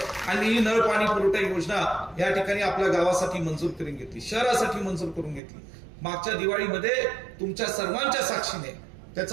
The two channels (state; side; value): drops out; left; at 5.4 s